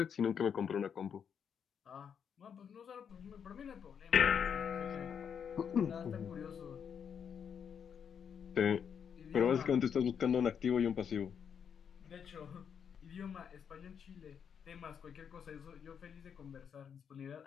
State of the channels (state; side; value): quieter; right; 7.5 dB